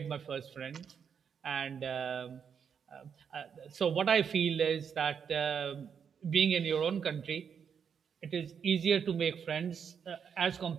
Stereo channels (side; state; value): left; quieter; 7.1 dB